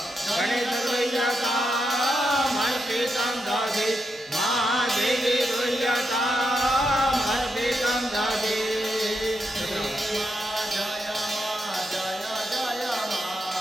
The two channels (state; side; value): normal; both; correlation 0.83